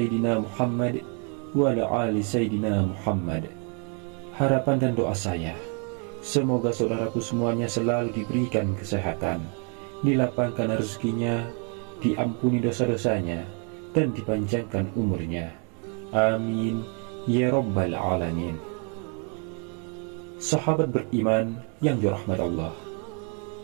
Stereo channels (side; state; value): left; quieter; 39.2 dB